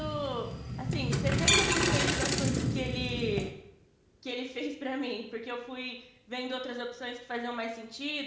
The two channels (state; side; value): identical; both; correlation 1.00